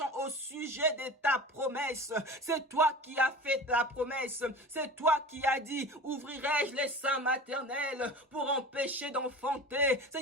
au sujet de ta promesse, c'est toi qui as fait ta promesse. C'est toi qui as dit, ouvrirai-je les seins maternels pour empêcher d'enfanter.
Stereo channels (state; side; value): normal; both; correlation 0.35